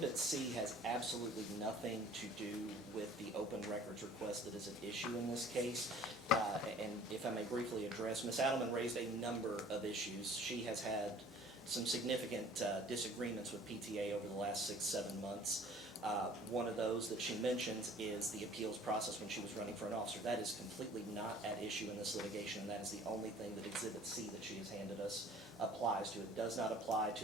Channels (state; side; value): normal; both; correlation 0.50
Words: C has absolutely nothing to do with the open records request that is at issue in this case. And if I may briefly address, Ms. Adelman raised a number of issues. She has had some significant disagreements with PTA over the last 6-7 months. One of those that she mentions is the appeals process when she was running for an officer. That is completely not at issue in this litigation, and that is the only thing that Exhibit C that she has handed us applies to. It does not apply